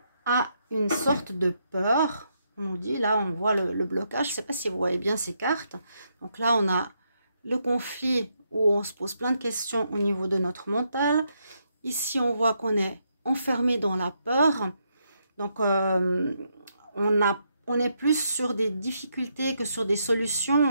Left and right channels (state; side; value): inverted; both; correlation -0.79